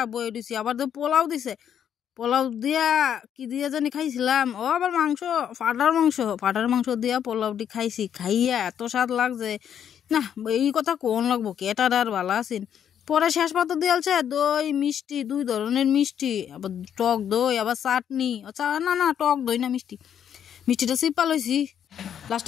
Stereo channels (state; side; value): quieter; right; 9.0 dB